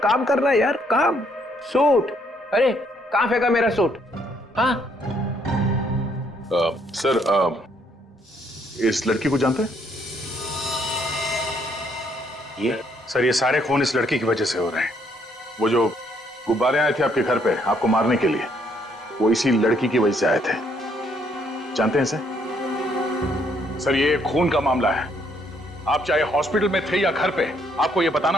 काम करना है यार, काम। सूट, अरे कहाँ फेंका मेरा सूट? हाँ सर, इस लड़की को जानते हैं? सर ये सारे खून इस लड़की की वजह से हो रहे हैं। वो जो गुब्बारे आए थे आपके घर पे आपको मारने के लिए, वो इसी लड़की की वजह से आए थे। जानते हैं सर, ये खून का मामला है। आप चाहे हॉस्पिटल में थे या घर पे, आपको ये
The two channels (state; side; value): normal; both; correlation 0.69